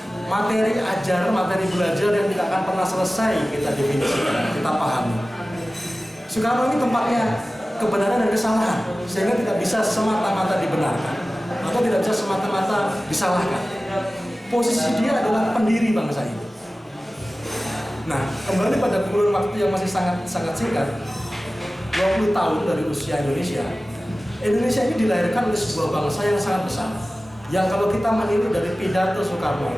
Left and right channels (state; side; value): normal; both; correlation 0.96